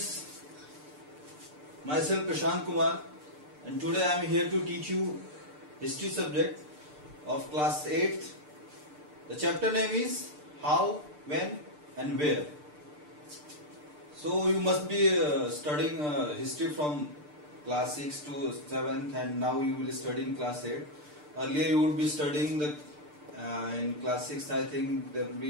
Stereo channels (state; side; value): late; left; 6.7 ms